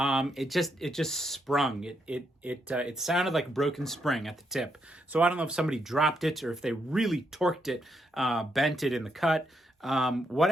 just sprung. It sounded like a broken spring at the tip. So I don't know if somebody dropped it or if they really torqued it, bent it in the cut.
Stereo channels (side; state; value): both; normal; correlation 0.79